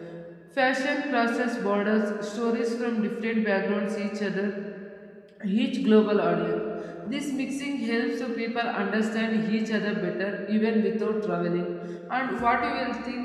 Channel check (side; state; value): both; identical; correlation 1.00